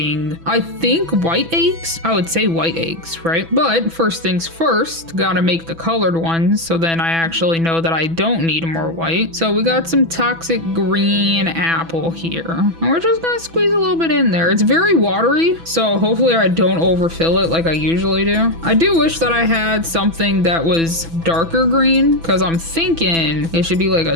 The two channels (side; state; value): left; late; 6.0 ms